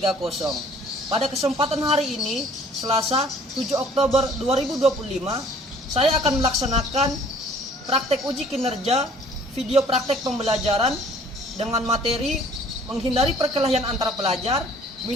Pada kesempatan hari ini, Selasa 7 Oktober 2025, saya akan melaksanakan praktek uji kinerja video praktek pembelajaran dengan materi menghindari perkelahian antar pelajar,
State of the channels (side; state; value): both; normal; correlation 0.55